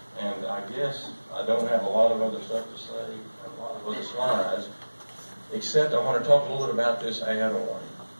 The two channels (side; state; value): both; inverted; correlation -1.00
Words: And I guess I don't have a lot of other stuff to say, a lot of other slides, except I want to talk a little bit about this